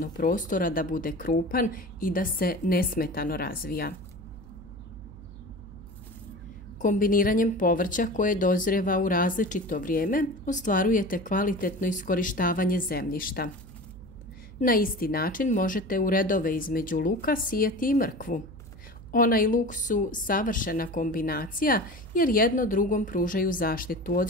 prostora da bude krupan i da se nesmetano razvija. Kombiniranjem povrća koje dozrijeva u različito vrijeme ostvarujete kvalitetno iskorištavanje zemljišta. Na isti način možete u redove između luka sijeti i mrkvu. Ona i luk su savršena kombinacija jer jedno drugom pružaju zaštitu od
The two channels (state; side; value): noise; right; hum, 17 dB below the sound